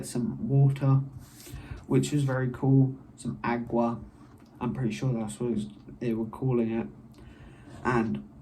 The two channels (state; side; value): identical; both; correlation 1.00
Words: some water, which was very cool. Some agua, I'm pretty sure that's what they were calling it. And